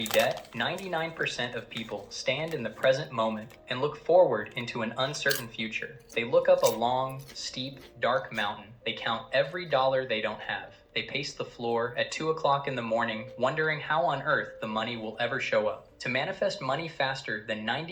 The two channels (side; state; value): both; identical; correlation 1.00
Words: debt, 99% of people stand in the present moment and look forward into an uncertain future. They look up a long, steep, dark mountain. They count every dollar they don't have. They pace the floor at 2 o'clock in the morning, wondering how on earth the money will ever show up. To manifest money faster than